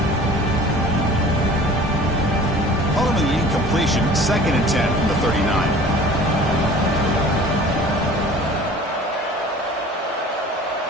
Following the incompletion, 2nd and 10 from the 39.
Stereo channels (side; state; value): both; normal; correlation 0.45